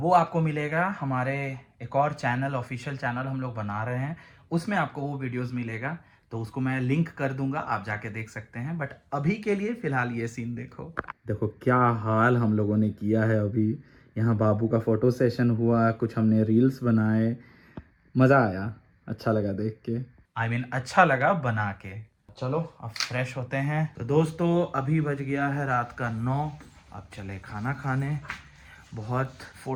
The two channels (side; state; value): both; identical; correlation 1.00